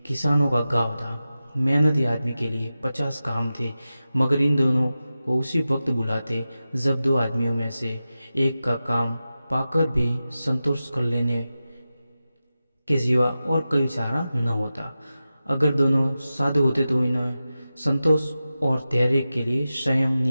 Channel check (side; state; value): both; inverted; correlation -0.94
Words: किसानों का गांव था। मेहनती आदमी के लिए 50 काम थे, मगर इन दोनों को उसी वक्त बुलाते जब 2 आदमियों में से एक का काम पाकर भी संतोष कर लेने के सिवा और कोई चारा न होता। अगर दोनों साधु होते तो इन्हें संतोष और धैर्य के लिए संयम